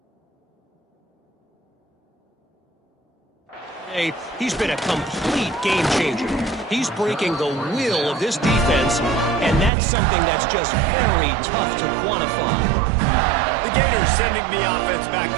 he's been a complete game changer. He's breaking the will of this defense, and that's something that's just very tough to quantify. The Gators sending the offense back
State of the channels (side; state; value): left; drops out; at 9.7 s